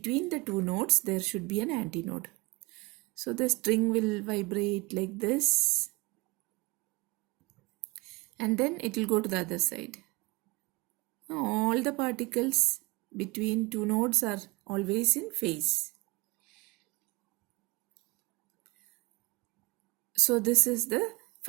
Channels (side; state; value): left; quieter; 25.3 dB